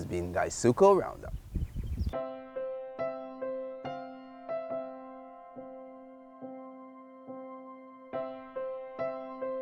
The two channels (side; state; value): both; identical; correlation 1.00